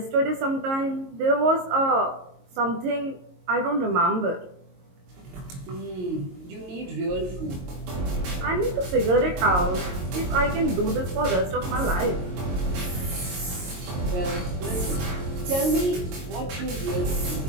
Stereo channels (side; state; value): left; late; 22 ms